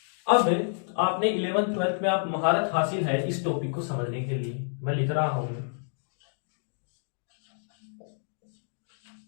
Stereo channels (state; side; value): silent; right; digital silence